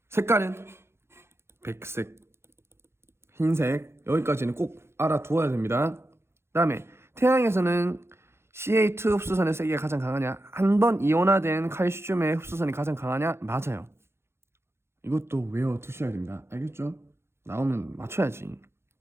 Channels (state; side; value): late; left; 0.12 ms